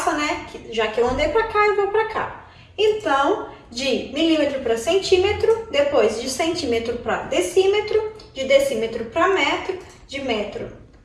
né? Já que eu andei para cá, eu vou para cá. Então, de milímetro para centímetro, depois de centímetro para decímetro, de decímetro para metro, de metro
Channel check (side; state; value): both; identical; correlation 1.00